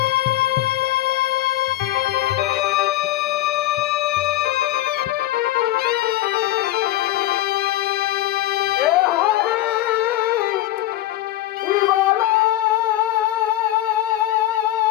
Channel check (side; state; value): right; quieter; 14.8 dB